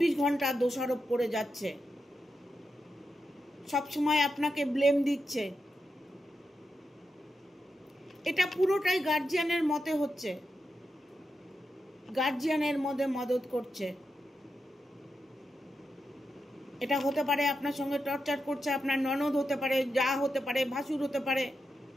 ঘন্টা দোষারোপ করে যাচ্ছে, সবসময় আপনাকে ব্লেম দিচ্ছে। এটা পুরোটাই গার্জিয়ানের মতে হচ্ছে, গার্জিয়ানের মধ্যে মদত করছে। এটা হতে পারে আপনার সঙ্গে টর্চার করছে, আপনার ননদ হতে পারে, যা হতে পারে, ভাসুর হতে পারে,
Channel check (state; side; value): normal; both; correlation 0.87